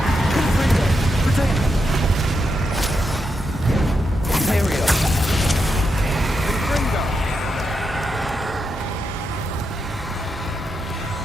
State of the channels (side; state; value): both; normal; correlation 0.84